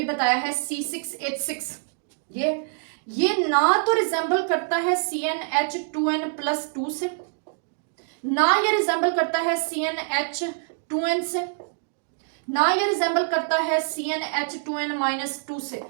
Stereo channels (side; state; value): left; silent; digital silence